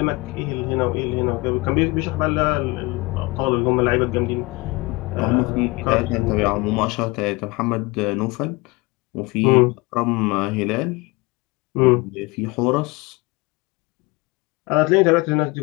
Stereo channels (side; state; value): right; quieter; 24.2 dB